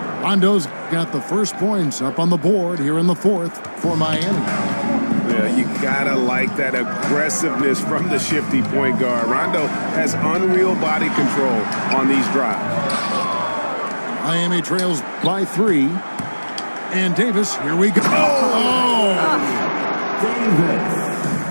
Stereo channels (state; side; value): inverted; both; correlation -1.00